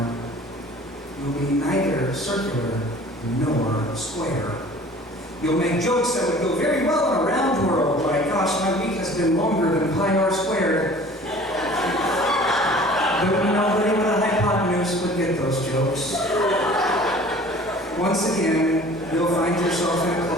You'll be neither circular nor square. You'll make jokes that would go very well in a round world, like, gosh, my week has been longer than pi r squared. But nobody with a hypotenuse would get those jokes. Once again, you'll find yourself in a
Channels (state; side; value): normal; both; correlation 0.47